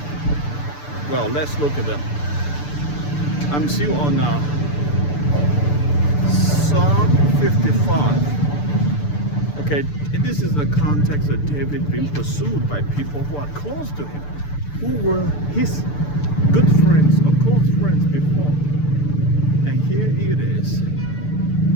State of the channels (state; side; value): late; right; 6.8 ms